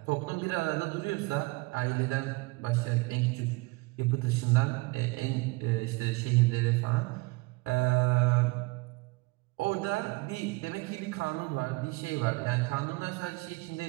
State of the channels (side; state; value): left; quieter; 25.0 dB